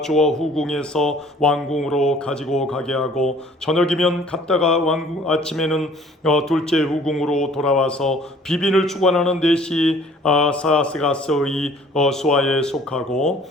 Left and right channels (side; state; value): both; normal; correlation 0.54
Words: 주어 후궁에서 왕궁으로 가지고 가게 하고 저녁이면 갔다가 왕궁 아침에는 둘째 후궁으로 돌아와서 비빈을 주관하는 넷이 사스가스의 수하에 속하고